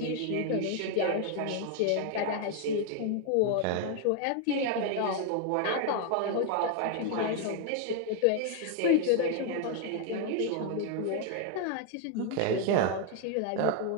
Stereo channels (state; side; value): different; both; correlation 0.01